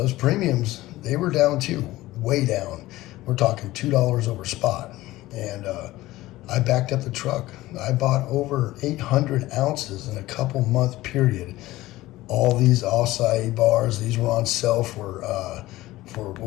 premiums, they were down too, way down. We're talking $2 over spot. And I backed up the truck. I bought over 800 ounces in a couple month period. All these acai bars, these were on sale for what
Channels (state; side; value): quieter; right; 17.3 dB